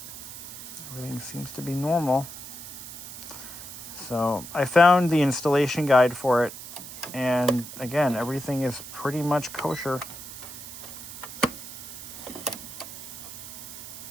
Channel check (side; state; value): right; noise; hiss, 12 dB below the sound